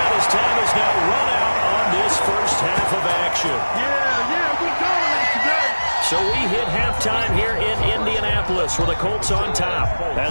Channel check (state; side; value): inverted; both; correlation -1.00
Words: as time is now run out on this first half of action. Yeah, we dominate today. So we hit halftime here in Indianapolis with the Colts on top.